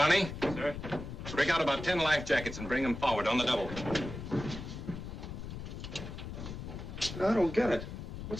Sir? Break out about 10 life jackets and bring them forward on the double. I don't get it.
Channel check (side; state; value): left; noise; rumble, 8 dB below the sound